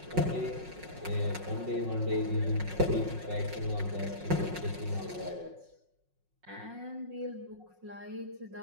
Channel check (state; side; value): late; left; 5.5 ms